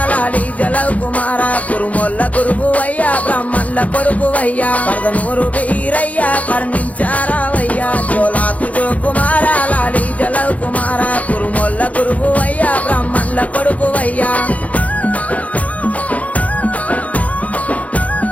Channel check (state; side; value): late; right; 0.069 ms